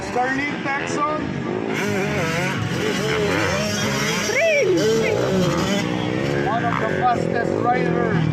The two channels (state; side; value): identical; both; correlation 1.00